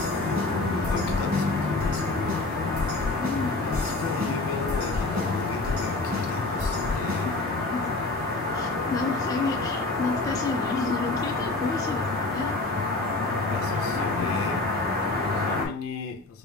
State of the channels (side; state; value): right; quieter; 3.1 dB